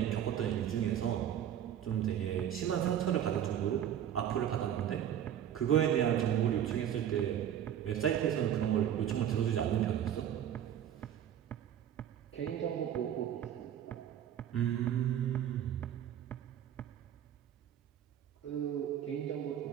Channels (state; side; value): quieter; left; 10.2 dB